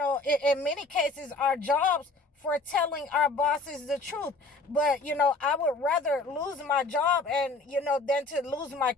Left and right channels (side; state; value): right; quieter; 3.3 dB